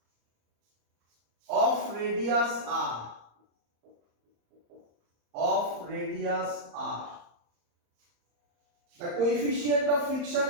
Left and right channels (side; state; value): left; late; 34 ms